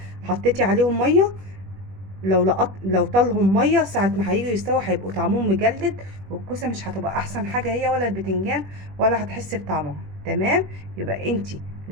حطيتي عليهم ميه، لو طالهم ميه ساعه ما هيجوا يستووا هيبقوا طعمهم مجلد، والكوسه مش هتبقى احسن حاجه هي ولا البتنجان، ولا هتحسي بطعمها. تمام؟ يبقى انتي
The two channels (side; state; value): left; late; 21 ms